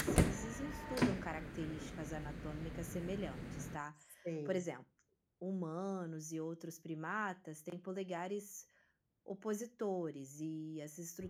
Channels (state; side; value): identical; both; correlation 1.00